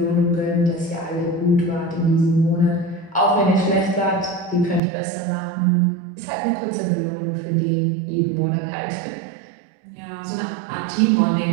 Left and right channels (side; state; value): left; drops out; at 4.8 s